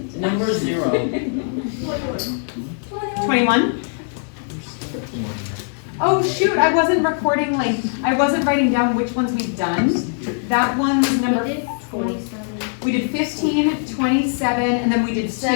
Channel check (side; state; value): right; silent; 59 dB below the other